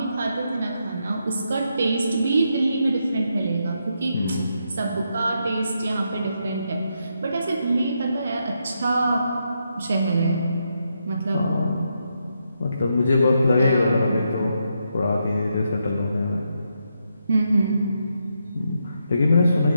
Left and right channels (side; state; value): both; inverted; correlation -0.81